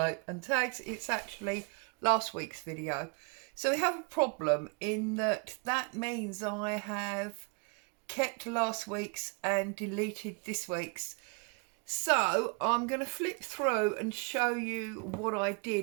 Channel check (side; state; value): left; quieter; 34.6 dB